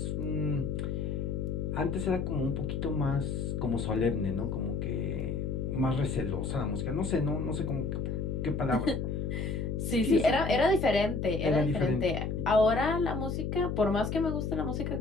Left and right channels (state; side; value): noise; left; hum, 2 dB below the sound